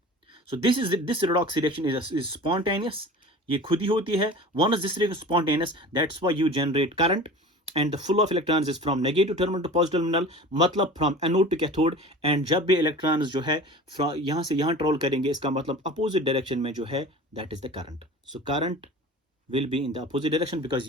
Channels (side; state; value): both; normal; correlation 0.38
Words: So this redox reaction is spontaneous, ये खुद ही होती है। One is this reaction spontaneous, that's why you generate current and the flow of electrons is from negative terminal to positive terminal, मतलब from anode to cathode. And जब भी electrons जो है यहां से यहां ट्रेवल करेंगे, इसका मतलब अपोजिट डायरेक्शन में जो है that is the current. So current will be in the opposite direction, because